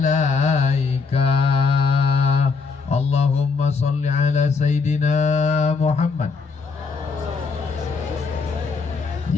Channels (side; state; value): right; quieter; 4.7 dB